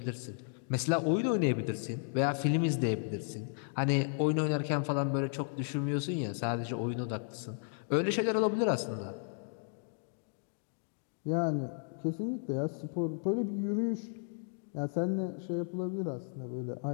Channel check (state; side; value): silent; right; digital silence